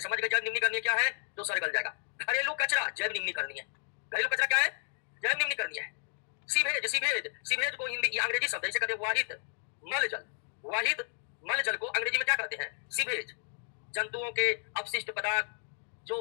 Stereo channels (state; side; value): silent; right; digital silence